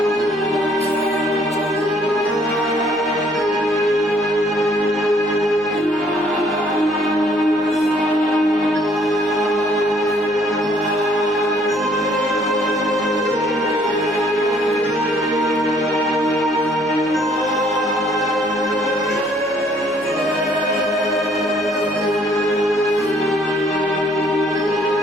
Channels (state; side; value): noise; left; hum, 27 dB below the sound